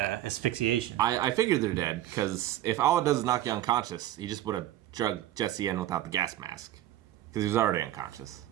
I figured they're dead because if all it does is knock you unconscious, he just would have drugged Jesse in without the gas mask because he was already unconscious,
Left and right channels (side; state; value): left; quieter; 13.4 dB